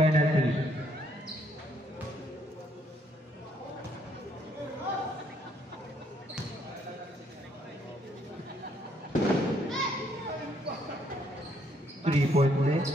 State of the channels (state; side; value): normal; both; correlation 0.69